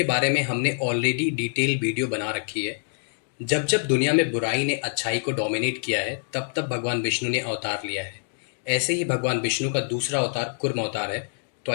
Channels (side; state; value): right; silent; digital silence